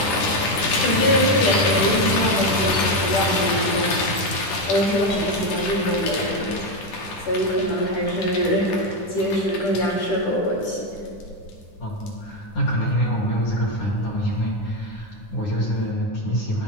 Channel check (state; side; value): late; right; 10 ms